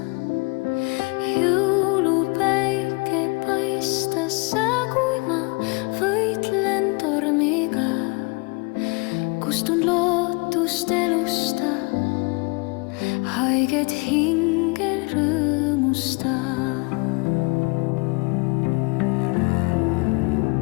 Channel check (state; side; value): quieter; right; 30.2 dB